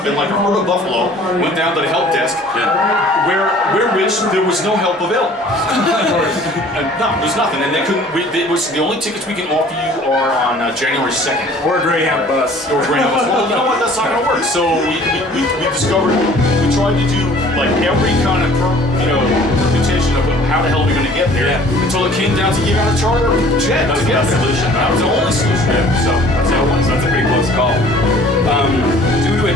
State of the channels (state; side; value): normal; both; correlation 0.51